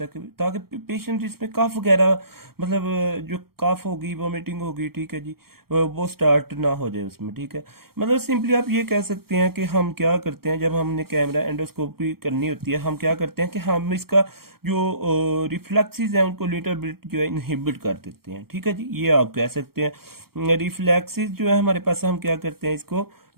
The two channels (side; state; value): left; late; 0.95 ms